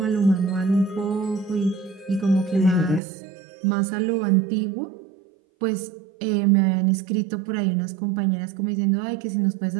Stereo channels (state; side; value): drops out; left; at 3.0 s